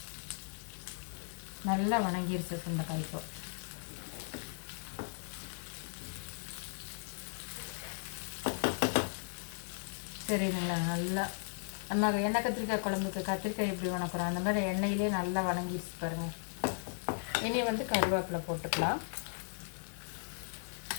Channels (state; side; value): silent; right; 53 dB below the other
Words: நல்லா வணங்கிருச்சு சுண்டைக்காய். இப்போ சரிங்களா, நல்லா நம்ம எண்ணெய் கத்திரிக்காய் குழம்புக்கு கத்திரிக்காய் எப்படி வணக்குறோம் அந்த மாதிரி எண்ணெயிலே நல்லா வணங்கிடுச்சு பாருங்கள். இனி வந்து கருவேப்பிலை போட்டுக்கலாம்.